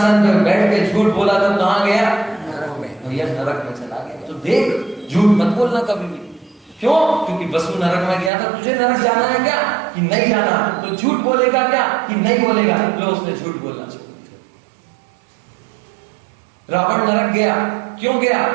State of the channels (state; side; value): drops out; left; at 8.3 s